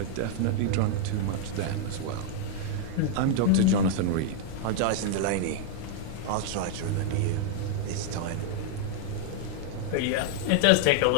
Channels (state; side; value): different; both; correlation 0.00